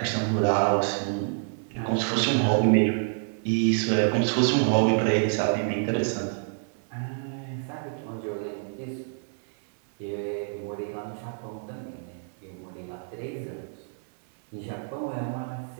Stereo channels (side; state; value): left; silent; 60 dB below the other